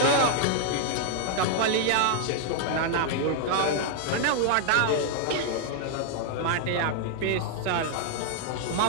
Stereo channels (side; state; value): both; different; correlation 0.00